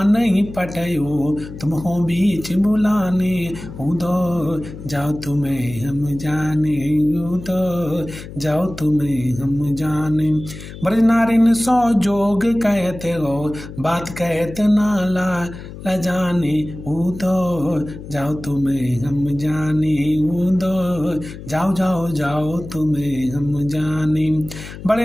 नहीं पटायो, तुम हो बीच बुलाने, उधो जाओ तुम्हें हम जाने, उधो जाओ तुम्हें हम जाने। ब्रज नारिन सौ जोग कहते हो, बात कहत नाला जाने, उधो जाओ तुम्हें हम जाने, उधो जाओ जाओ जाओ तुम्हें हम जाने।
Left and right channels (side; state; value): left; noise; hum, 13 dB below the sound